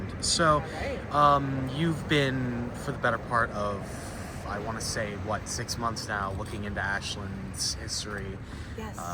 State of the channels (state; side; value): identical; both; correlation 1.00